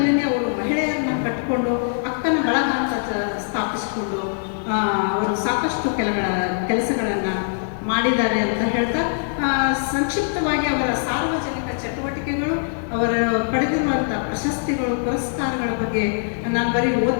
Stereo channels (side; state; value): right; silent; 64 dB below the other